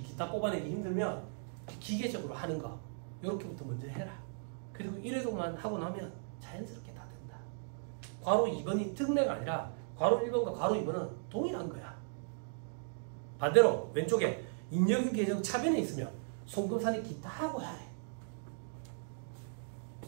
기타 뽑아내기 힘들면 기계적으로 하는 거 요렇게부터 먼저 해라. 그리고 1회독만 하고 나면 자연스럽게 다 된다. 괄호 2번이 특례가 아니라 괄호 1번과 괄호 2번은 동일한 거야. 반대로 왼쪽에 잉여금 계정 차변에 있으면 송금사니 기타 하고 하래.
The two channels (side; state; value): left; silent; digital silence